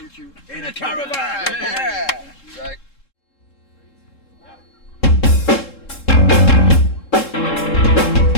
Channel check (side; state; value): right; late; 3.7 ms